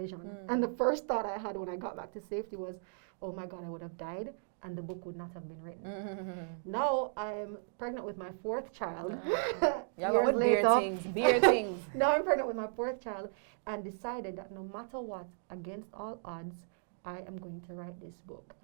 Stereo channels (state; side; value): silent; left; digital silence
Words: And the first thought I had when I got back to safety was, oh my God, I would have died and the book would not have been written. Now I'm pregnant with my 4th child. Years later. Beer things. Now I'm pregnant with my 4th child and decided that no matter what, against all odds, I am going to write this book.